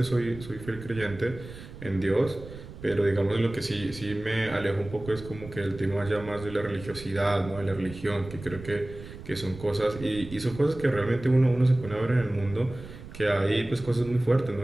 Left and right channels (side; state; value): right; noise; rumble, 14 dB below the sound